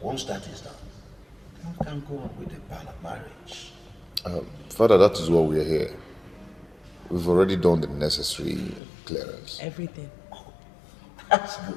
Once that is done, we can go on with the plan of marriage. Father, that is why we are here. We've already done the necessary clearance. Everything. Oh, that's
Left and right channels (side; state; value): right; drops out; at 8.8 s